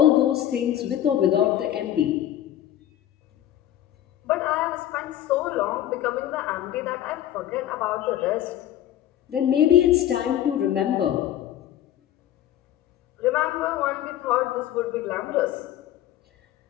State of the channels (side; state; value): right; quieter; 12.1 dB